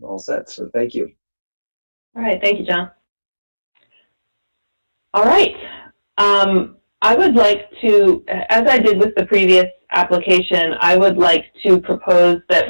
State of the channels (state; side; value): inverted; both; correlation -1.00